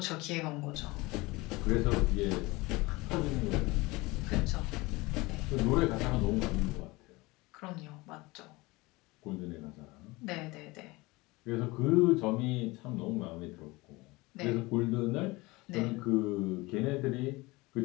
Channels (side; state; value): right; quieter; 22.5 dB